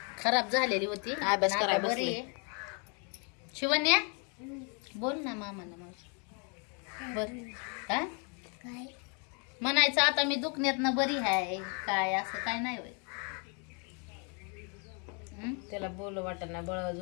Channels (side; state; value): right; quieter; 36.6 dB